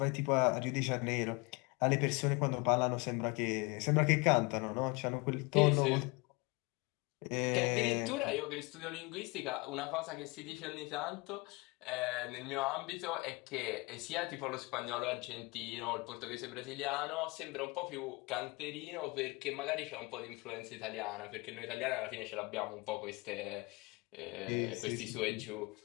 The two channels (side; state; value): right; quieter; 25.9 dB